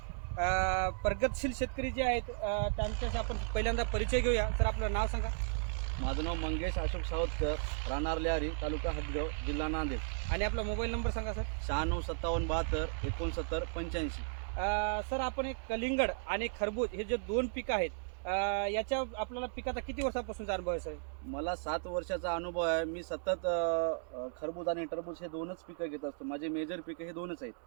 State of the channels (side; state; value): left; silent; digital silence